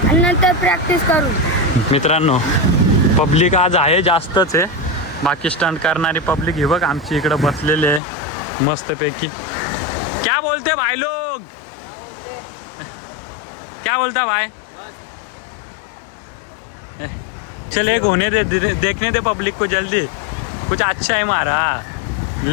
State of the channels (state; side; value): drops out; right; at 8.0 s